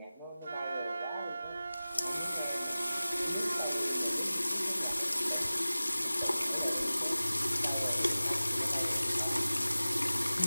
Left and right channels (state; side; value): inverted; both; correlation -0.97